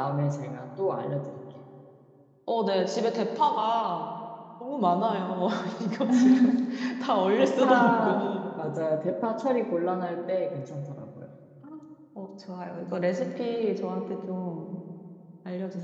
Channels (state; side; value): identical; both; correlation 1.00